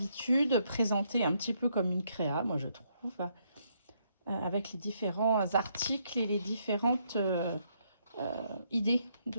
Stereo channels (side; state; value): both; inverted; correlation -0.74